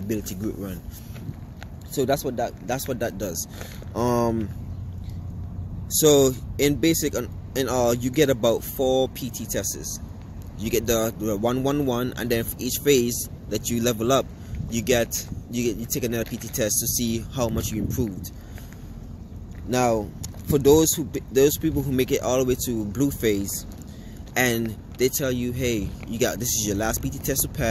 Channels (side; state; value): both; identical; correlation 1.00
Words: group run. So that's what that does. So in basic, you get about 4 PT tests. You get the 1-1-1, and then for each phase that you level up, you take another PT test to see how much you improved. Now, for those people who make it all the way to blue phase, and they tell you, hey, this is your last PT test to